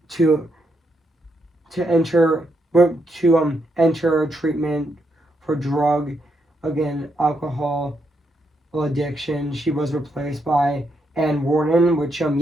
to enter enter treatment for drug again, alcohol addiction. She was replaced by Anne Warden, which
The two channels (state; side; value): normal; both; correlation 0.79